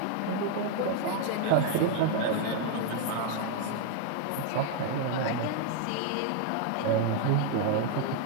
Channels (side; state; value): both; different; correlation 0.00